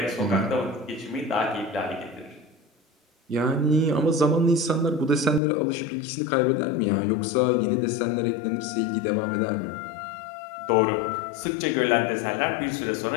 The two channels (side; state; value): right; drops out; at 5.4 s